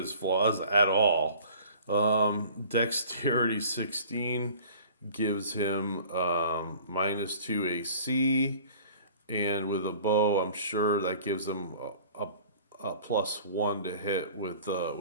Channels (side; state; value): both; inverted; correlation -0.47